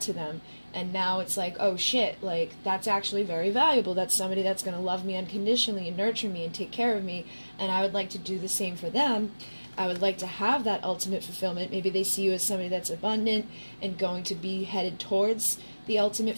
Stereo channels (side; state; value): both; inverted; correlation -1.00